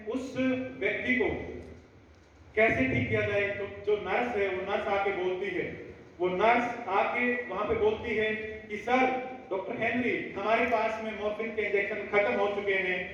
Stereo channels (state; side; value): identical; both; correlation 1.00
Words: उस व्यक्ति को कैसे ठीक किया जाए, तो जो नर्स है वो नर्स आके बोलती है, वो नर्स आके वहां पे बोलती है कि सर डॉक्टर हेनरी, हमारे पास में मॉर्फिन के इंजेक्शन खत्म हो चुके हैं,